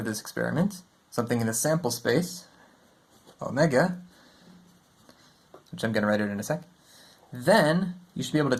this experiment, something in the sample space, omega, which I'm going to write out in a sec, then you should be able to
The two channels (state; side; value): identical; both; correlation 1.00